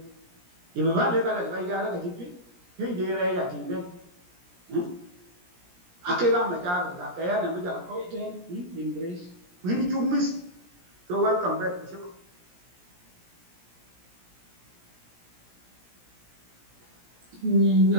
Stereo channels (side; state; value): left; late; 17 ms